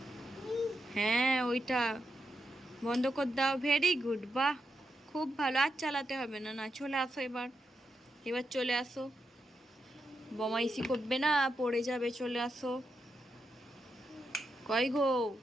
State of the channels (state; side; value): normal; both; correlation 0.85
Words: হ্যাঁ, ওইটা বন্ধ করে দাও। ভেরি গুড, বাহ, খুব ভালো। আর চালাতে হবে না। না, চলে আসো এবার, এবার চলে আসো, বমাইশি করবে না, পড়ে যাবে। চলে আসো। কই গো?